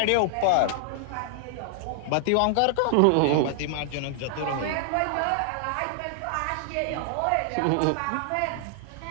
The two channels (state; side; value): different; both; correlation -0.01